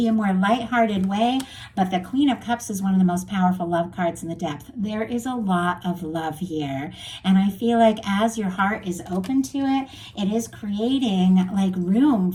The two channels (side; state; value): both; identical; correlation 1.00